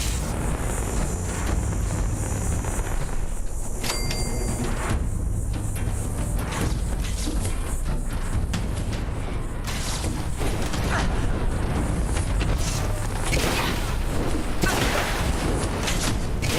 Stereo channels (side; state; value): both; identical; correlation 1.00